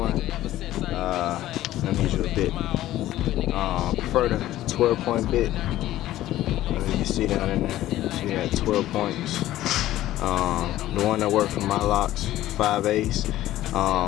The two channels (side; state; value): right; quieter; 14.5 dB